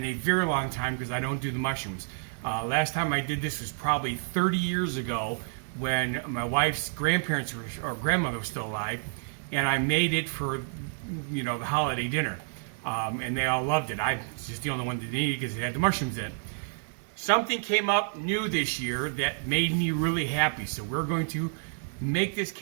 a very long time because I don't do the mushrooms. Last time I did this was probably 30 years ago when my wife's grandparents or grandmother was still alive, and I made it for, the holiday dinner. And they all loved it. I was just the only one that didn't eat it because it had the mushrooms in it. Something came up new this year that made me really happy. So we're going to make this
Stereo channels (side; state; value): left; silent; digital silence